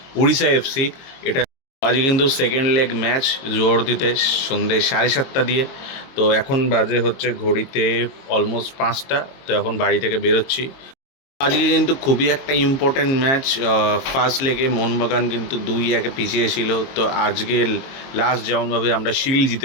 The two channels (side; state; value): right; late; 22 ms